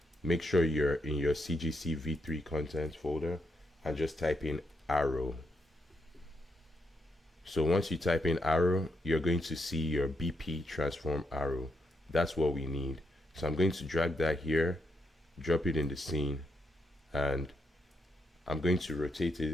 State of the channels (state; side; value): normal; both; correlation 0.80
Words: make sure you're in your CGC v3 content folder, and just type in arrow. So once you type in arrow, you're going to see your BP transform arrow. That's what we need. So I'm going to drag that here, drop it in the scene, and I'm going to rotate